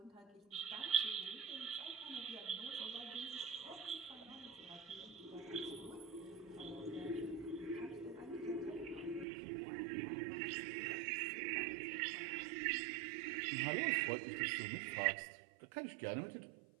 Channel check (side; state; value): left; drops out; at 9.2 s